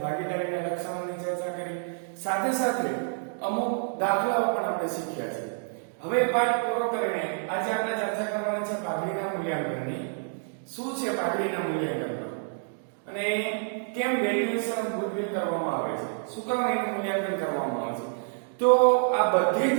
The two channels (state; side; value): silent; left; digital silence